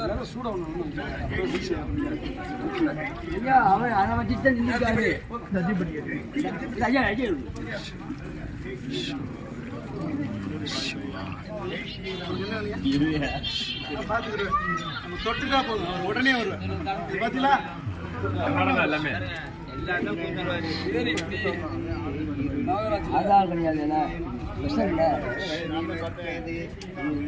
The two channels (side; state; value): both; identical; correlation 1.00